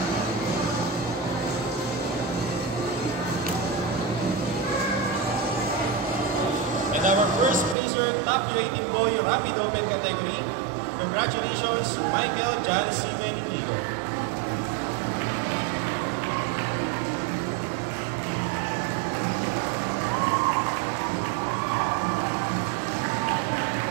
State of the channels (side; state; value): left; drops out; at 7.8 s